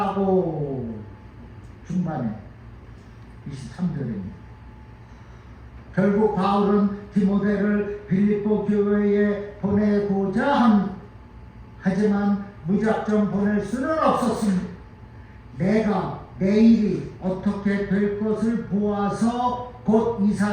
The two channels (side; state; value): both; identical; correlation 1.00